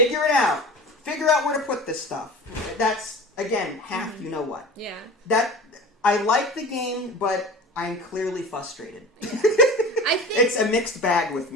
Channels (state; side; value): normal; both; correlation 0.35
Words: it out. Figure out where to put this stuff. That's, again, half you know what. Yeah. I like the game, but I'm clearly frustrated. Yeah. I think it's a mixed bag with